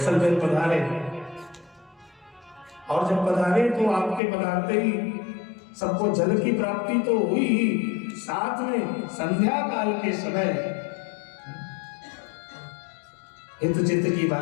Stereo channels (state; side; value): drops out; right; at 4.2 s